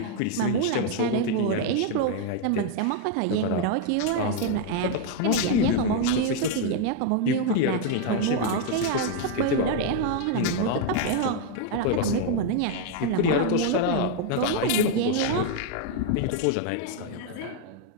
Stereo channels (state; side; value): different; both; correlation 0.01